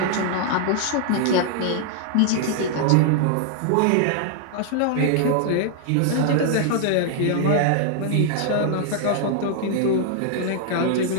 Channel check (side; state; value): both; different; correlation 0.00